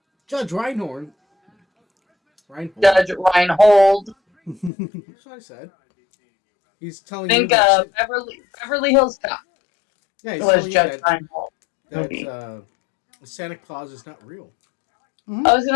Judge Reinhold. Judge Reinhold. That's what I said. He's telling Think you that Beverly Hills Cop yeah, he's was telling you Judge Reinhold. that Santa Claus is not real. Mm-hmm. I was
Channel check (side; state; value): right; drops out; at 4.7 s